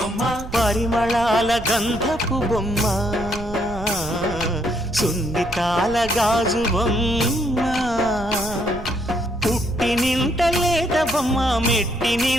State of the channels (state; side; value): noise; right; rumble, 12 dB below the sound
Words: పరిమళాల గంధపు బొమ్మ సున్నితాల గాజు బొమ్మ పుట్టి నింట లేత బొమ్మ మెట్టి